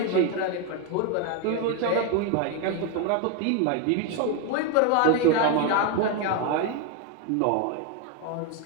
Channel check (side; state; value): both; different; correlation 0.01